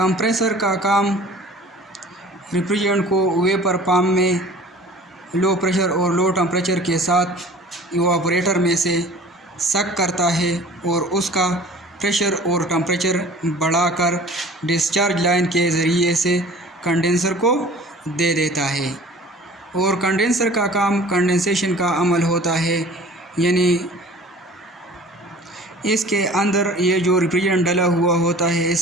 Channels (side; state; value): both; normal; correlation 0.46